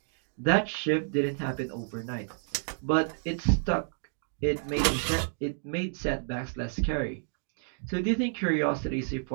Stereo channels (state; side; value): silent; left; digital silence